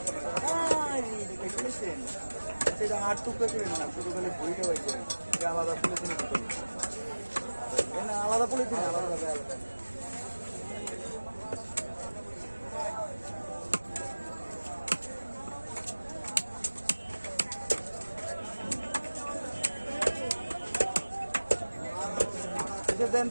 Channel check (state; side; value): inverted; both; correlation -1.00